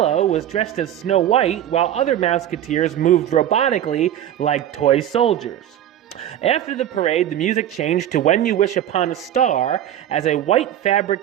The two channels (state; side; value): quieter; left; 11.2 dB